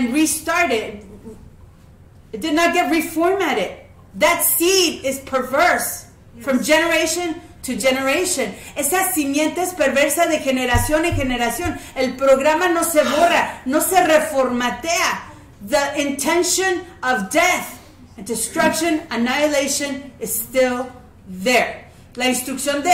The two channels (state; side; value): identical; both; correlation 1.00